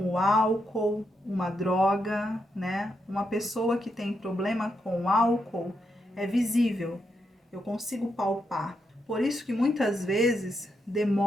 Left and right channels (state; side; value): normal; both; correlation 0.82